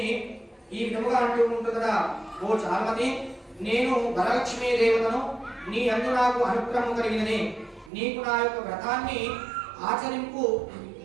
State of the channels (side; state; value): left; drops out; at 7.9 s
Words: ఈ విధముగా అంటూ ఉంటుందట, ఓ చారుమతి, నేను వరలక్ష్మీ దేవతను, నీ అందు నాకు అనుగ్రహం కలిగినని, నీకు నా యొక్క వ్రతాన్ని ఆచరింపు